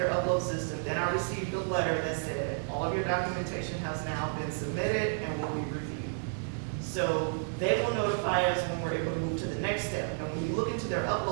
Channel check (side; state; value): left; silent; digital silence